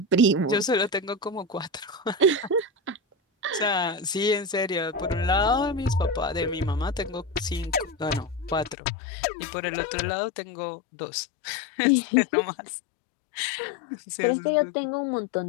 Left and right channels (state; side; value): drops out; right; at 8.8 s